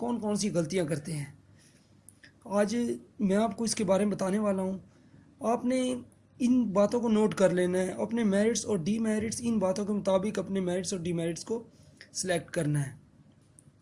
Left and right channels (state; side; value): identical; both; correlation 1.00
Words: कौन सी गलतियाँ करते हैं। आज मैं आपको इसके बारे में बताने वाला हूँ। आपने इन बातों को नोट कर लेना है, अपने मेरिट्स और डीमेरिट्स इन बातों के मुताबिक अपने मेरिट्स और डीमेरिट्स को सिलेक्ट करना है।